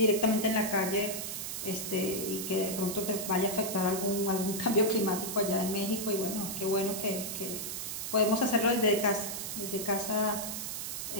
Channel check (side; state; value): right; noise; hiss, 5 dB below the sound